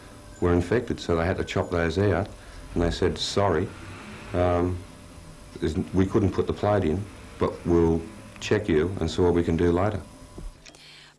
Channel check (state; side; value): identical; both; correlation 1.00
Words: were infected, so they had to chop those out. And they said, sorry, we couldn't put the plate in, but we'll check you and see what we can do later.